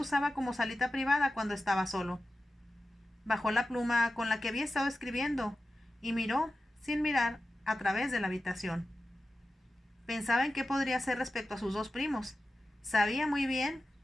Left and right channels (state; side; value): normal; both; correlation 0.94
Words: como salita privada cuando estaba solo. Bajó la pluma con la que había estado escribiendo y miró, sin mirar, a través de la habitación. Pensaba en qué podría hacer respecto a sus dos primos. Sabía muy bien